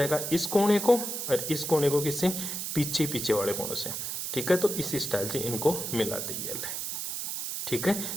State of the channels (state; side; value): noise; right; hiss, 4 dB below the sound